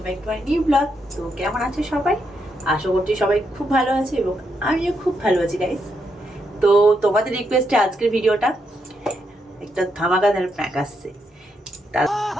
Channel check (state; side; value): normal; both; correlation 0.80